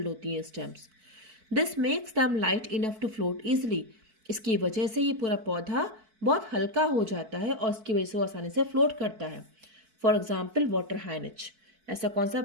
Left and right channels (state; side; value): late; left; 4.5 ms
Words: होती है stems. This makes them light enough to float easily. इसकी वजह से ये पूरा पौधा बहुत हल्का हो जाता है और इसकी वजह से वो आसानी से फ्लोट करता है। फॉर एग्जाम्पल वाटर हाइनिच, ऐसा कौन सा